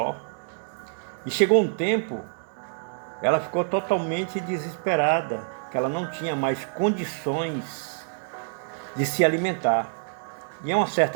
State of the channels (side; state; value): left; silent; 61 dB below the other